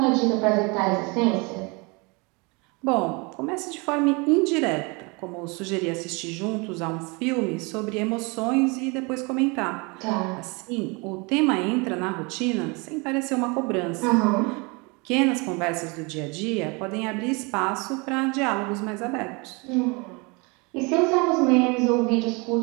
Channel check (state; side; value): quieter; left; 29.1 dB